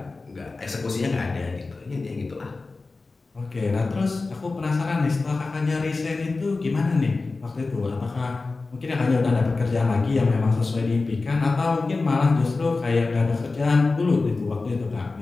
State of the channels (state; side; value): quieter; right; 3.7 dB